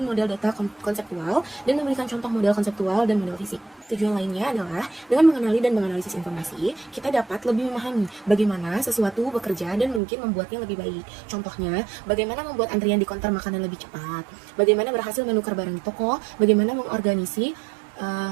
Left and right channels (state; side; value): drops out; left; at 10.0 s